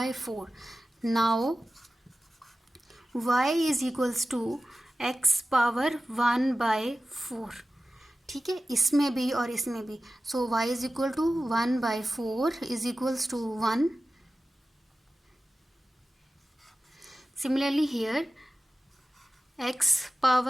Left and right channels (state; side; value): normal; both; correlation 0.95